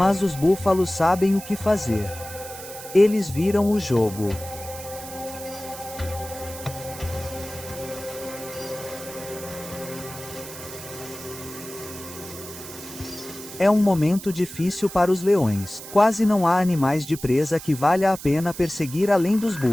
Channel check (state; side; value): noise; right; hiss, 13 dB below the sound